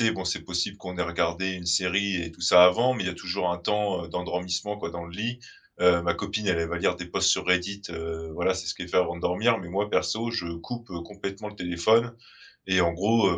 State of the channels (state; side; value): identical; both; correlation 1.00